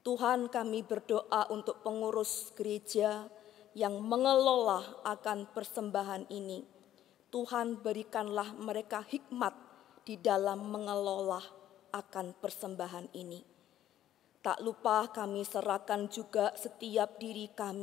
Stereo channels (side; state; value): right; quieter; 12.1 dB